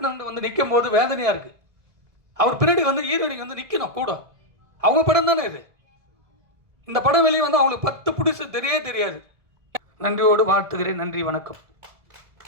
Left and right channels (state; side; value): late; left; 1.7 ms